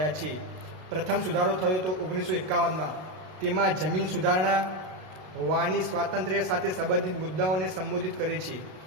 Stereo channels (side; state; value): left; late; 32 ms